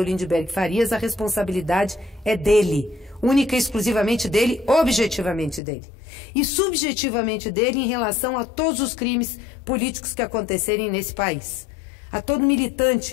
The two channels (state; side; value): drops out; right; at 5.6 s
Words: Lindbergh Farias, a responsabilidade é dele. Única e exclusivamente dele, objetivamente dele. E subjetivamente dele em relação a todos os crimes políticos que acontecerem nesse país. A todo